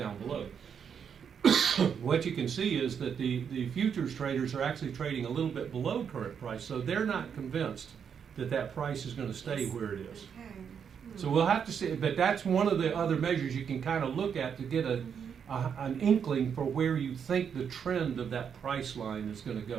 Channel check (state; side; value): quieter; left; 7.3 dB